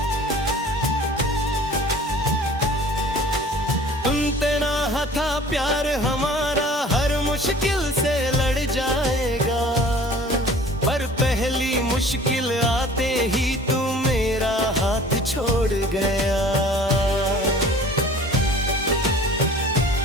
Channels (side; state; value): both; normal; correlation 0.47